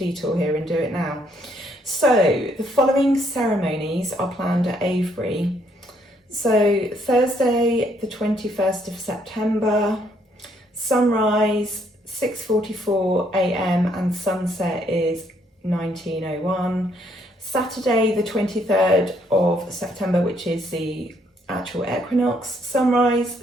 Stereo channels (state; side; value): normal; both; correlation 0.70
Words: here and do it now. So the following ceremonies are planned at Avebury. So Thursday, the 21st of September, sunrise 6:44 a.m. and sunset is 19:01. Saturday, the 23rd of September, which is the actual equinox, sunrise